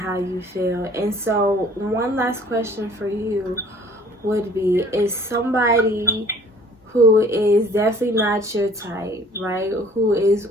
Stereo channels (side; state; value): both; normal; correlation 0.53